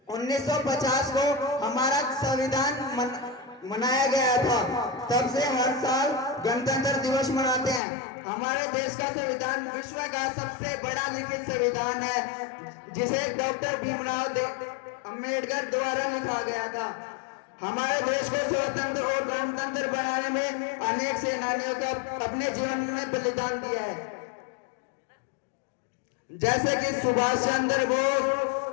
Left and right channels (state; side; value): drops out; right; at 7.8 s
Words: 1950 को हमारा संविधान मनाया गया था। तब से हर साल गणतंत्र दिवस मनाते हैं। हमारे देश का संविधान विश्व का सबसे बड़ा लिखित संविधान है, जिसे डॉक्टर भीमराव अंबेडकर द्वारा लिखा गया था। हमारे देश को स्वतंत्र और गणतंत्र बनाने में अनेक सेनानियों का अपने जीवन में बलिदान दिया है, जैसे कि सुभाष चंद्र बोस,